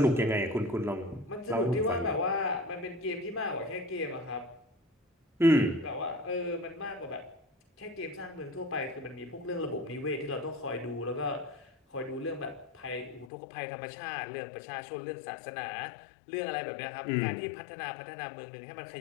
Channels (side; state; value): right; drops out; at 13.2 s